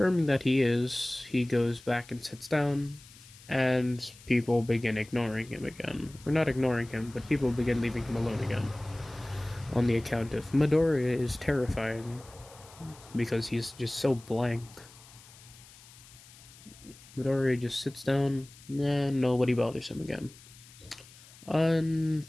that he is, he goes back and sits down, and people begin ignoring him again. Or not ignoring him, but people begin leaving him alone again. On the account of Midoriya is terrifying, because he's just so blank. Midoriya just sits down, and nobody bothers him again.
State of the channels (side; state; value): left; noise; hiss, 22 dB below the sound